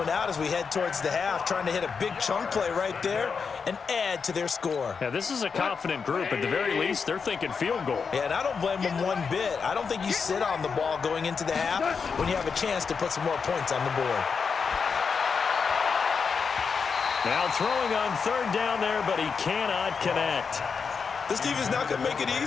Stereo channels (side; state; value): right; quieter; 5.7 dB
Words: out as we head towards the half, trying to hit a big chunk play right there and add to their score. Yeah, this is a confident group. At the very least, they're thinking field goal. Yeah, and I don't blame them one bit. I don't think you sit on the ball going into the half when you have a chance to put some more points on the board. Now throwing on 3rd down there, but he cannot connect. This team is not going to make it